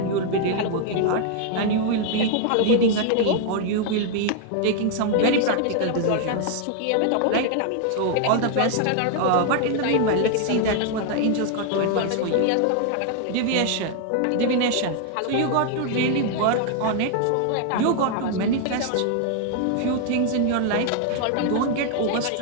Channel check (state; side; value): different; both; correlation 0.00